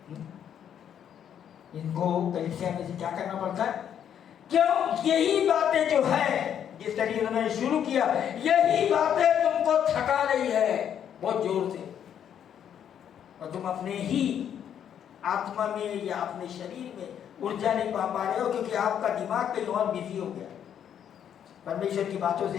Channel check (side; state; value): right; quieter; 9.2 dB